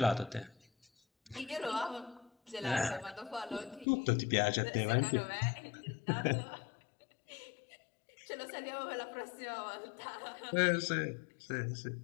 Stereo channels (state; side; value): drops out; right; at 3.9 s